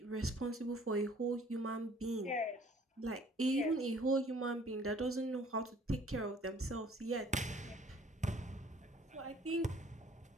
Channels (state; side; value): normal; both; correlation 0.56